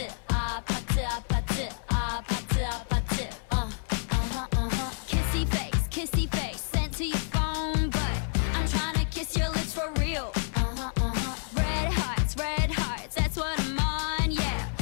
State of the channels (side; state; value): right; silent; 58 dB below the other